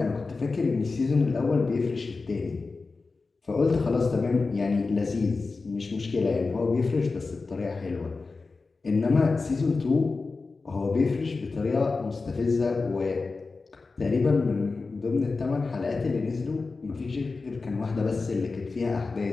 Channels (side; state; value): right; quieter; 4.0 dB